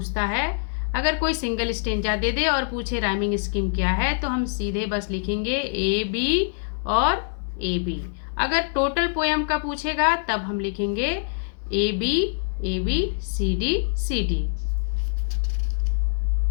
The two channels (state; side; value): silent; right; digital silence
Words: है, अगर कोई सिंगल स्टेंजा दे दे और पूछे राइमिंग स्कीम क्या है, तो हम सीधे बस लिखेंगे ए बी और ए बी। अगर टोटल पोएम का पूछेगा तब हम लिखेंगे ए बी सी डी।